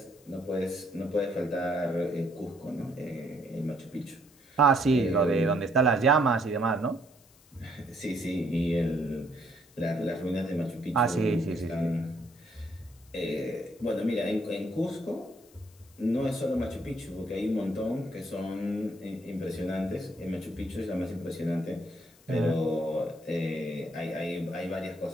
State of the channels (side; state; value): left; noise; hiss, 28 dB below the sound